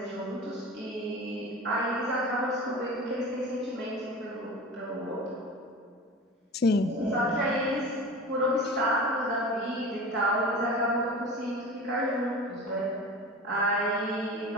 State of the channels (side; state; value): both; normal; correlation 0.34